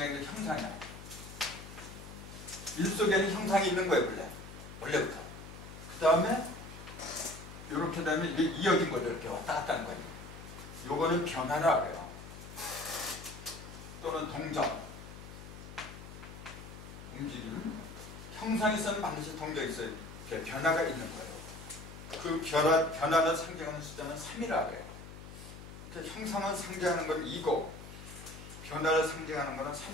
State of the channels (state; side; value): noise; left; hum, 13 dB below the sound